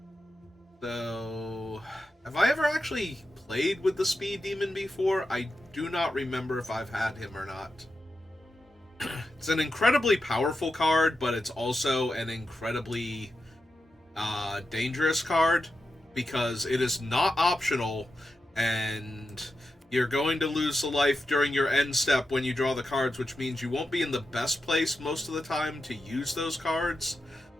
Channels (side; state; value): both; normal; correlation 0.89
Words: So, have I ever actually played with the Speed Demon before? I do not remember if I've had him or not. It's an incredibly powerful card, but it's also an incredibly dangerous card because it is not optional, and you're going to lose the life during your end step when you draw the cards, which means you won't be in the best place most of the time to use those cards.